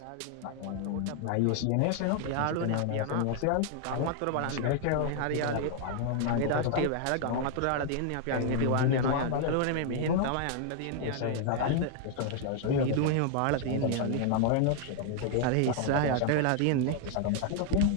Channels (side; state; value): both; different; correlation 0.00